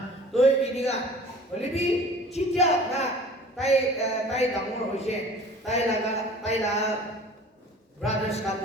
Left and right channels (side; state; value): both; normal; correlation 0.45